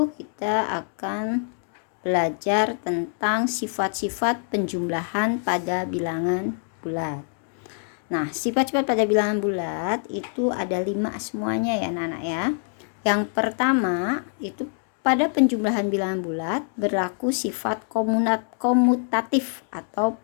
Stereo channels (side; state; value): right; silent; 56 dB below the other